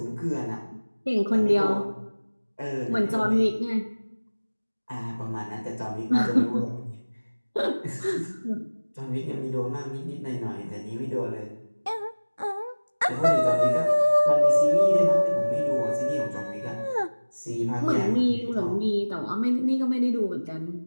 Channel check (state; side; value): inverted; both; correlation -1.00